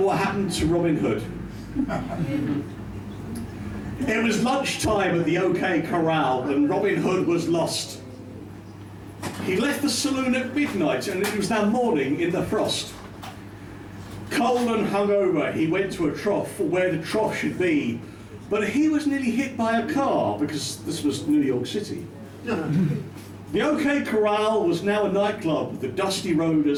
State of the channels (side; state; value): both; identical; correlation 1.00